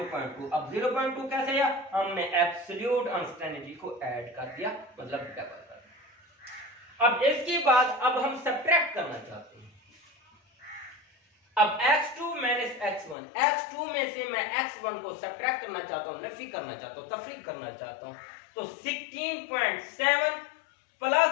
अब 0.2 कैसे आया, हमने एब्सोल्यूट अनसर्टेनिटी को ऐड कर दिया, मतलब डबल कर दिया। अब इसके बाद अब हम सब्ट्रैक्ट करना चाहते हैं। अब x2 माइनस x1, x2 में से मैं x1 को सब्ट्रैक्ट करना चाहता हूं, नफी करना चाहता हूं, तफरीक करना चाहता हूं, तो 16.7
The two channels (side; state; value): right; drops out; at 13.2 s